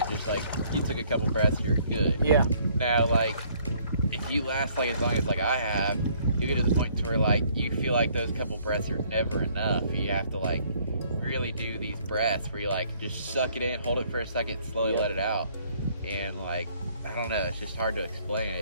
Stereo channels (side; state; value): both; inverted; correlation -0.62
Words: just like you took a couple breaths, you're good. yeah. Now, like if you last like as long as like I have, you get to the point to where like you feel like those couple breaths are never enough. You have to like really do these breaths where you like just suck it in, hold it for a second, slowly let it out, and like I don't know, it's just hard to